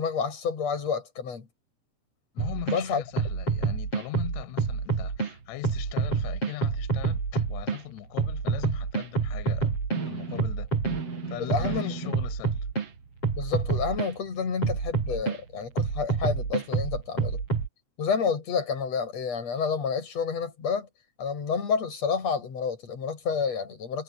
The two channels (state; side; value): late; right; 8.4 ms